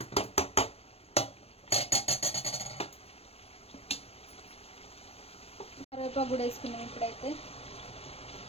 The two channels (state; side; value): late; right; 0.29 ms